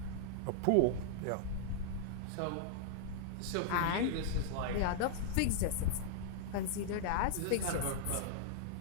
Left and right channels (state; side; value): different; both; correlation -0.01